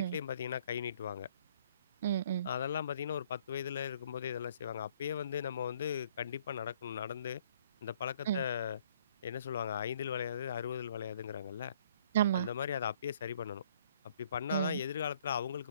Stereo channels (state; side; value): inverted; both; correlation -0.61